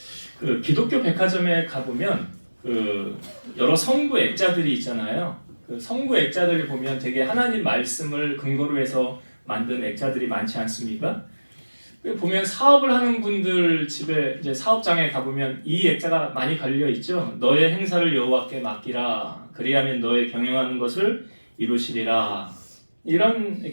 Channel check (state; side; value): inverted; both; correlation -1.00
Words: 그 기독교 백화점에 가보면 그 여러 성구 액자들이 있잖아요. 그 성구 액자들을 보면 되게 하나님 말씀을 근거로 해서 만든 액자들이 많지 않습니까? 보면 사업을 하는 분들 집에 이제 사업장에 가보면 이 액자가 많이 걸려 있죠. 너의 행사를 여호와께 맡기라. 그리하면 너의 경영하는 것을 이루시리라. 이런